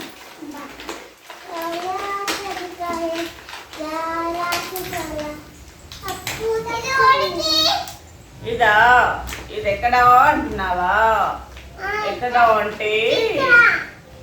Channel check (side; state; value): both; identical; correlation 1.00